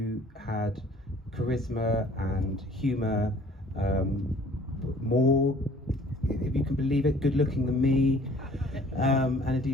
had charisma and humour, more, if you can believe it, good looking than me, and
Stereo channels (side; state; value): both; normal; correlation 0.53